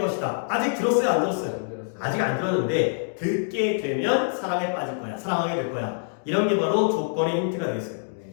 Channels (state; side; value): silent; right; digital silence